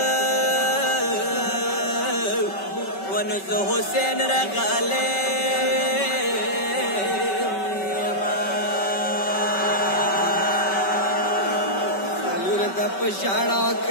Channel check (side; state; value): right; late; 5.2 ms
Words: Wanu zo Hussein ragale Salur da pashara